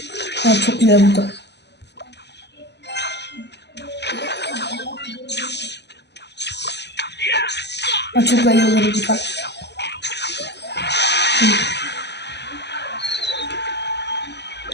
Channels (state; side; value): late; right; 0.50 ms